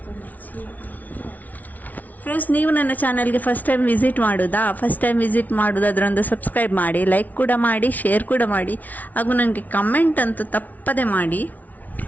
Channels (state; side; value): late; right; 0.076 ms